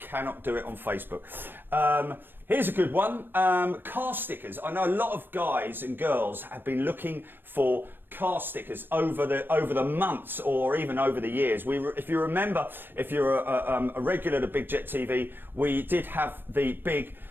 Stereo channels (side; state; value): left; late; 0.096 ms